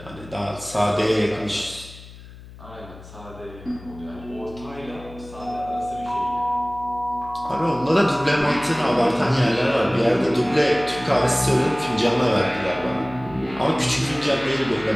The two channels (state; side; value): noise; left; hum, 18 dB below the sound